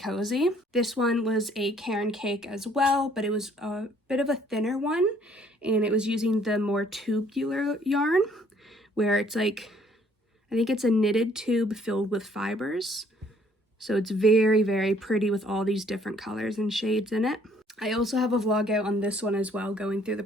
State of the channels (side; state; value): both; normal; correlation 0.62